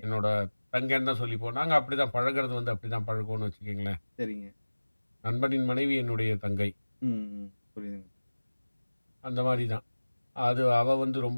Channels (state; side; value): inverted; both; correlation -1.00